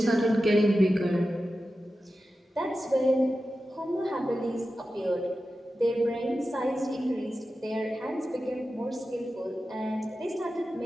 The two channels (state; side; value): normal; both; correlation 0.93